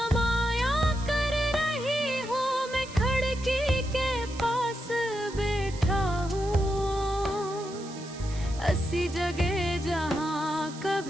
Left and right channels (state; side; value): noise; right; hiss, 17 dB below the sound